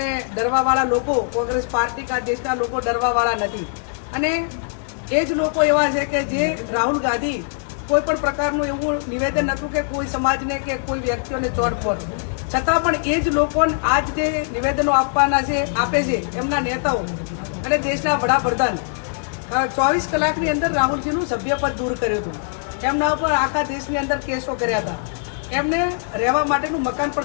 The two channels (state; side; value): silent; right; digital silence